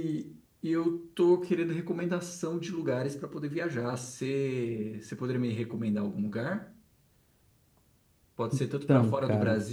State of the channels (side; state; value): both; identical; correlation 1.00